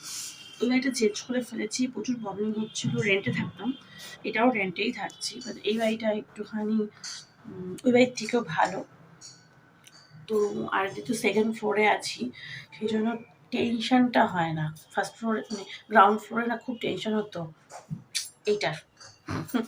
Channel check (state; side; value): identical; both; correlation 1.00